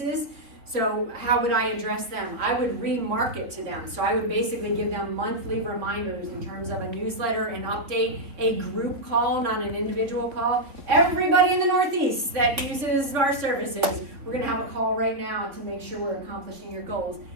So how would I address them? I would remarket to them. So I would basically give them monthly reminders in terms of a newsletter, an update, a group call, not an individual call. Everybody in the Northeast that uses our services, we're gonna have a call right now to make sure we're accomplishing your goals,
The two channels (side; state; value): left; late; 3.4 ms